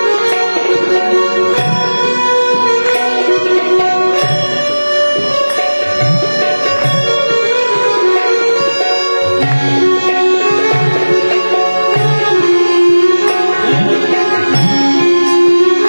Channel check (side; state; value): both; inverted; correlation -1.00